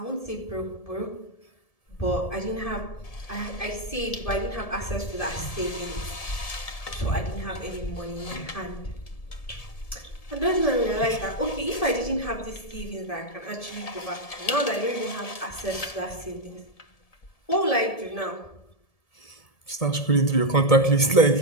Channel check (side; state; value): right; late; 1.7 ms